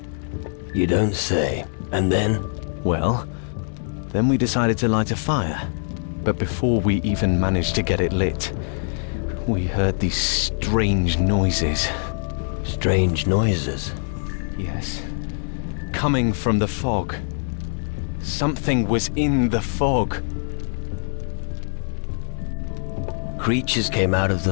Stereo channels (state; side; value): silent; right; digital silence